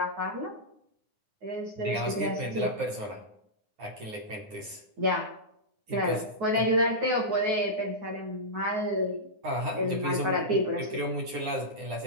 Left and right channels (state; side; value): late; left; 9.7 ms